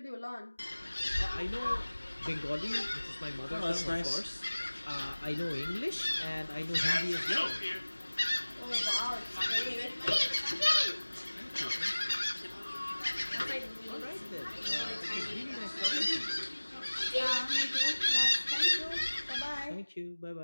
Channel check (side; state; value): both; inverted; correlation -1.00